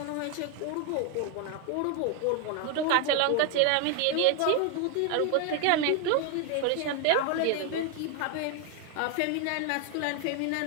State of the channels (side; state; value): both; different; correlation 0.01